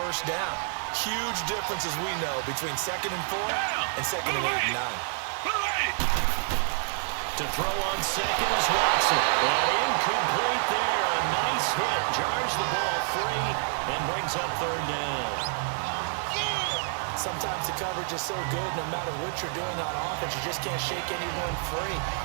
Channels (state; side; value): silent; left; 58 dB below the other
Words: down. Huge difference, as we know, between 2nd and 4 and 2nd and 8 and 9. To throw on second is Watson. And incomplete there. A nice hit. Jars the ball free and brings up 3rd down. Sometimes the coverage is so good, no matter what you're doing on offense, you just can't shake anyone free.